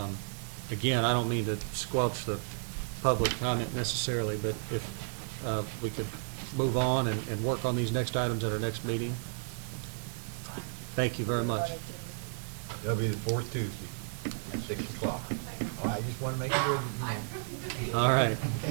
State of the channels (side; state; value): left; silent; digital silence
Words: again, I don't mean to squelch the public comment necessarily, but if we could move on and work on these next items at our next meeting. Thank you very much. That'll be the 4th Tuesday at 6 o'clock. All right, just want to make sure that you know. All right.